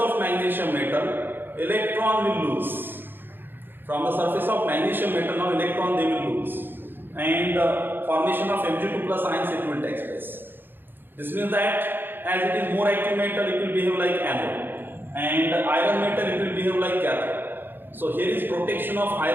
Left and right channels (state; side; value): late; left; 0.097 ms